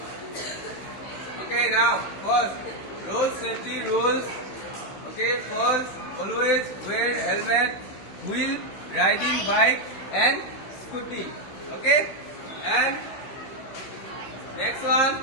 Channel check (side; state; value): right; late; 16 ms